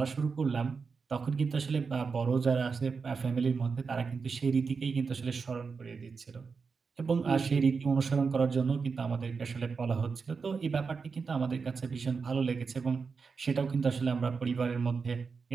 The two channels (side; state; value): left; quieter; 5.1 dB